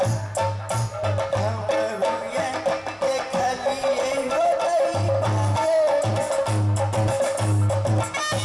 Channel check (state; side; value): identical; both; correlation 1.00